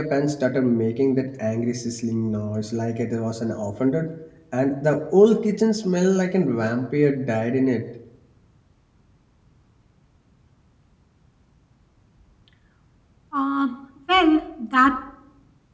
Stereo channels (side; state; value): both; identical; correlation 1.00